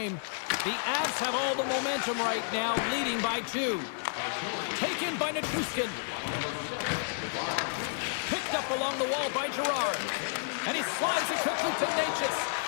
The Avs have all the momentum right now, leading by 2. Taken by Nichushkin. Picked up along the wall by Gerard. And he slides it quickly to Natchez.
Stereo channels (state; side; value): silent; right; 57 dB below the other